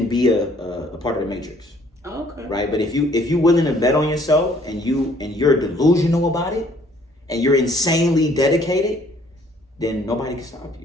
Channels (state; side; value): normal; both; correlation 0.60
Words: be a part of the matrix, Okay. right? But if you're willing to bet on yourself and you're delusional about it and you're insanely dedicated, then nobody can stop